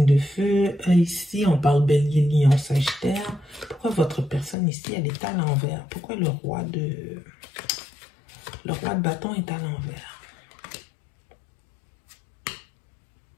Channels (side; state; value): right; drops out; at 4.5 s